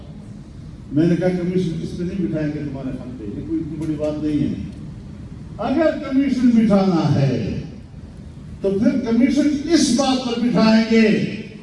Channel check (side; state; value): both; identical; correlation 1.00